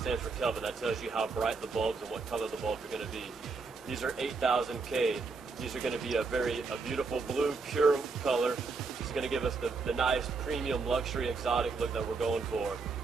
for Kelvin. That tells you how bright the bulbs and what color the bulbs are going to be. These are 8,000 K. These are going to be a beautiful blue, pure color. is going to give us the nice premium luxury exotic look that we're going for.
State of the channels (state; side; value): quieter; left; 4.3 dB